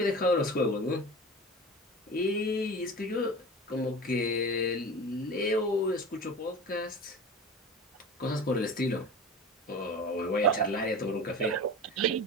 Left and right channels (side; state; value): both; normal; correlation 0.33